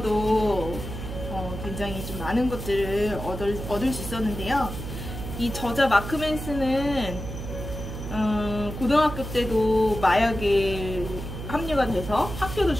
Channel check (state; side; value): noise; right; hum, 8 dB below the sound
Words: 굉장히 좀 많은 것들을 얻을 수 있었는데요. 이 저자 마크 맨슨은 고등학교 때도 마약에 합류가 돼서 학교도